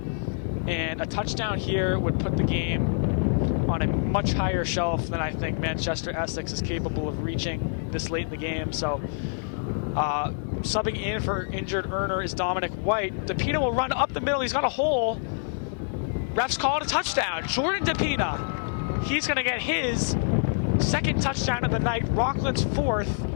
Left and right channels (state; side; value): silent; right; digital silence